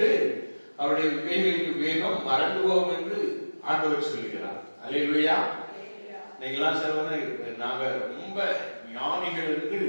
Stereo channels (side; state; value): both; inverted; correlation -1.00